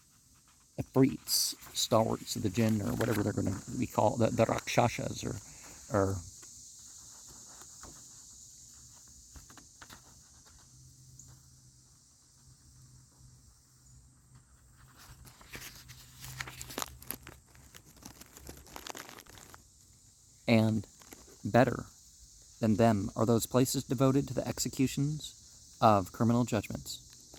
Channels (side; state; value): both; identical; correlation 1.00